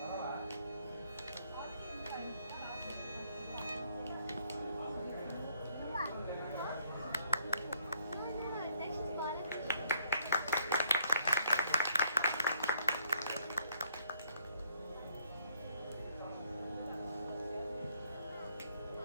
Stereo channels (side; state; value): both; inverted; correlation -0.67